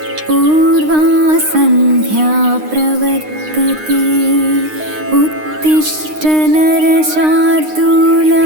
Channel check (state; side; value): late; left; 9.7 ms